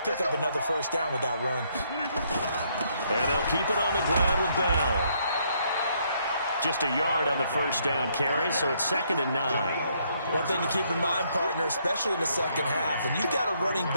up another first down with that run. And they'll keep it on the ground with Bell. Just a yard on the first down carry, so it's 2nd and 9. One thing to keep in mind, partner, especially in the second half, when you've got a running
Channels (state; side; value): inverted; both; correlation -0.71